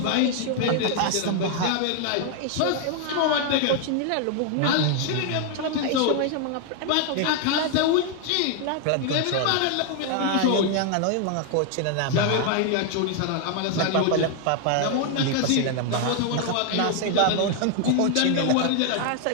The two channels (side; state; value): both; different; correlation 0.00